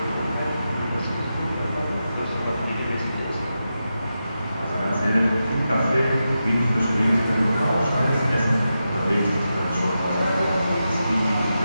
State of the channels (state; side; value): inverted; both; correlation -0.89